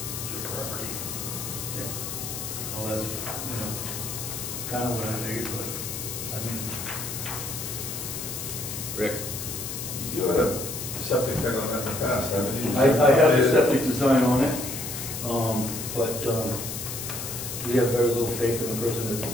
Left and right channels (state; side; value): noise; left; hiss, 6 dB below the sound